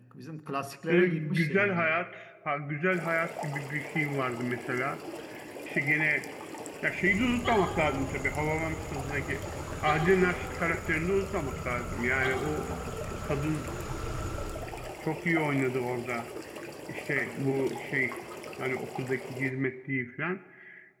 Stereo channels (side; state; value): both; identical; correlation 1.00